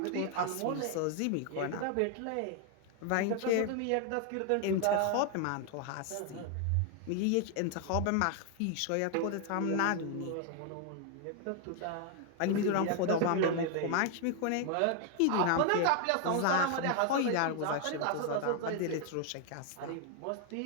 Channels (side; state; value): both; different; correlation 0.00